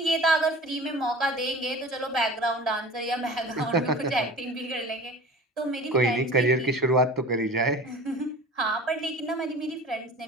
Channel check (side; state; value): both; normal; correlation 0.40